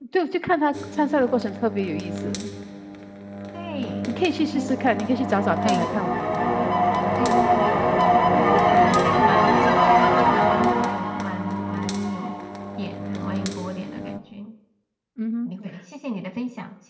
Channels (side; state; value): both; identical; correlation 1.00